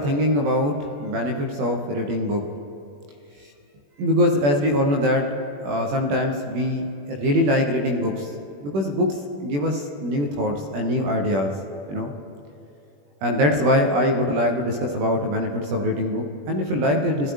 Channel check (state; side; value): late; left; 21 ms